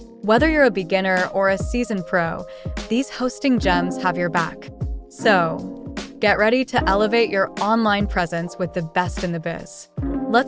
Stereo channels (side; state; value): both; identical; correlation 1.00